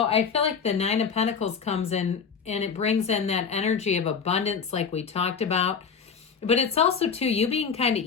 I feel like the Nine of Pentacles comes in and it brings in that energy of abundance like we talked about. But it's also, too, you being kind of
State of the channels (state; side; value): quieter; right; 6.1 dB